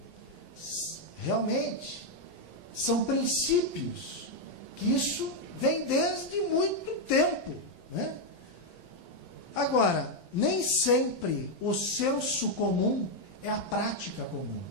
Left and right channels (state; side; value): late; right; 11 ms